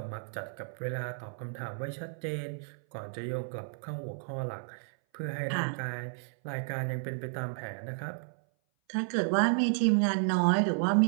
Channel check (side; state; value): left; silent; 56 dB below the other